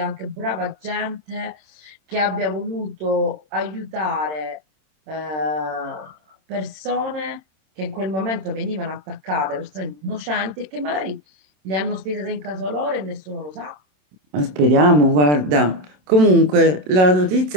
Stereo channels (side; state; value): left; late; 27 ms